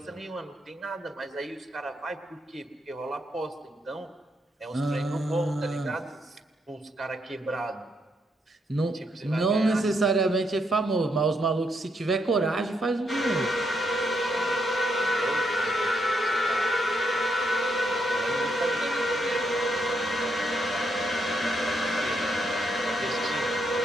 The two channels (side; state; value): both; normal; correlation 0.78